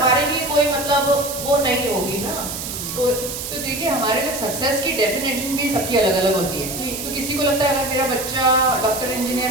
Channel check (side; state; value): right; noise; hiss, 6 dB below the sound